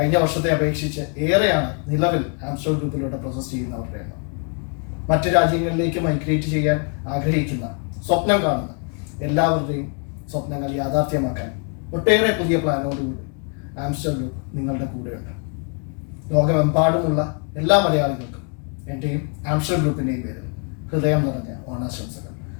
വർഷത്തെ അപേക്ഷിച്ച് ഏറെയാണ് നിലവിൽ ആംസ്റ്റർ ഗ്രൂപ്പിലൂടെ പ്രോസസ് ചെയ്യുന്നവരുടെ എണ്ണം. മറ്റു രാജ്യങ്ങളിലേക്ക് മൈഗ്രേറ്റ് ചെയ്യാൻ ആഗ്രഹിക്കുന്ന, സ്വപ്നം കാണുന്ന എല്ലാവരുടെയും സ്വപ്നങ്ങൾ യാഥാർത്ഥ്യമാക്കാൻ ഒട്ടേറെ പുതിയ പ്ലാനോടുകൂടി ആംസ്റ്റർ ഗ്രൂപ്പ് നിങ്ങളുടെ കൂടെയുണ്ട്. ലോകമെമ്പാടുമുള്ള എല്ലാ മലയാളികൾക്കും എൻ്റെയും ആംസ്റ്റർ ഗ്രൂപ്പിൻ്റെയും പേരിൽ ഹൃദയം നിറഞ്ഞ ഓണാശംസകൾ.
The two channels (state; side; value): quieter; right; 38.7 dB